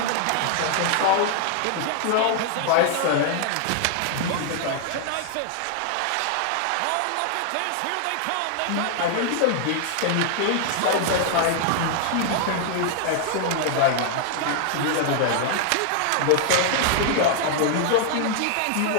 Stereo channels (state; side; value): different; both; correlation 0.00